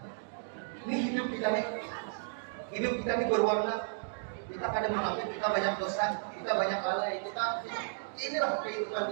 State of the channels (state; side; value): silent; left; digital silence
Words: Ini hidup kita nih. Hidup kita ini berwarna. Kita kadang mengaku kita banyak dosa, kita banyak lalai, kita inilah kehidupan